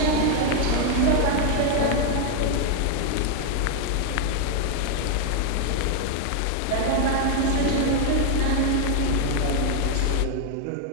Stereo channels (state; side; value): different; both; correlation 0.00